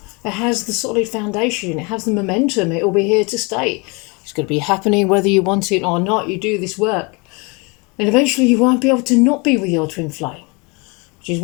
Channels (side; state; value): right; quieter; 29.2 dB